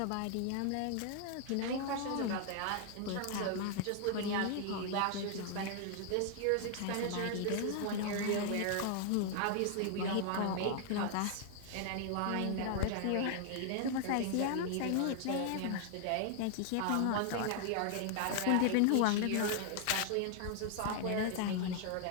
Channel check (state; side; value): different; both; correlation 0.00